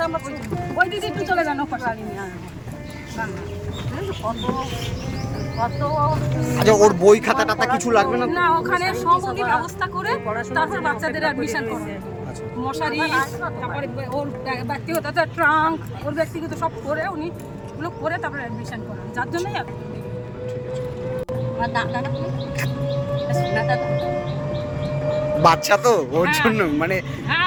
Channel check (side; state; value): both; identical; correlation 1.00